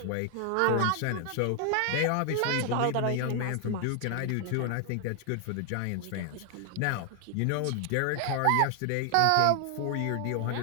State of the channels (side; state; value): both; different; correlation 0.00